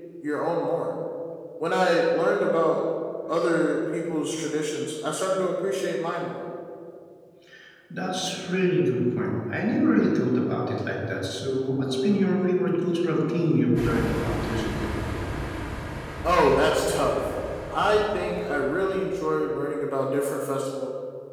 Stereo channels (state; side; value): identical; both; correlation 1.00